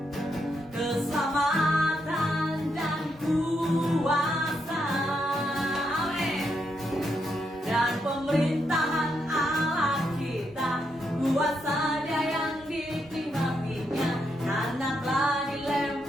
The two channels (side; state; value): both; normal; correlation 0.80